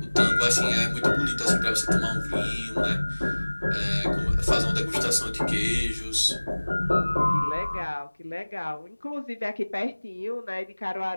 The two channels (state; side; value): inverted; both; correlation -1.00